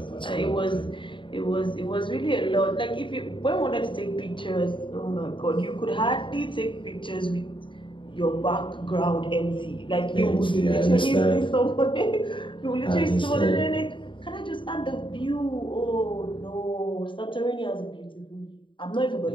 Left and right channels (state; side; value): late; right; 0.24 ms